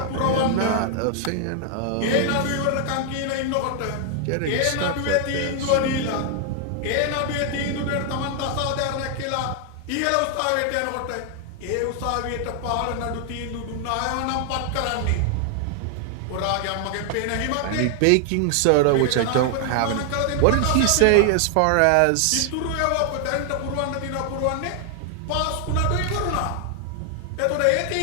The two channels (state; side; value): different; both; correlation 0.00